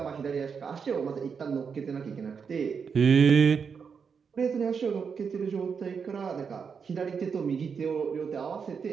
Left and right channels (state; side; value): quieter; left; 6.2 dB